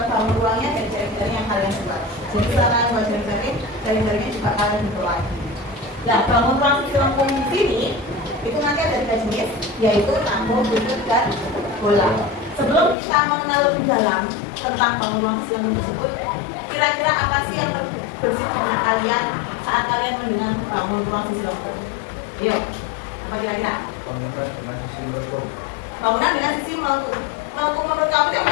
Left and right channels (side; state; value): right; drops out; at 13.0 s